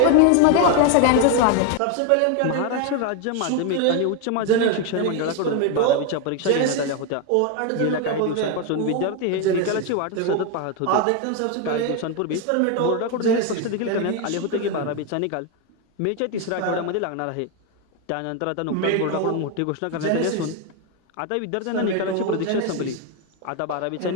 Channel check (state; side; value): different; both; correlation 0.01